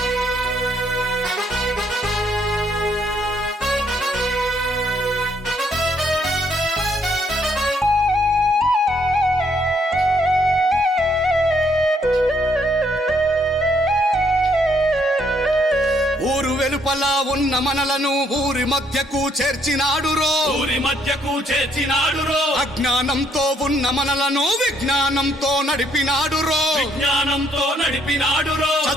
ఊరు వెలుపల ఉన్న మనలను ఊరి మధ్యకు చేర్చినాడురో, ఊరి మధ్యకు చేర్చినాడురో, అజ్ఞానంతో ఉన్న మనలను విజ్ఞానంతో నడిపినాడురో, విజ్ఞానంతో నడిపినాడురో,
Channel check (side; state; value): both; normal; correlation 0.69